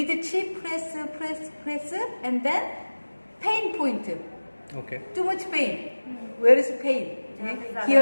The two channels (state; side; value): inverted; both; correlation -1.00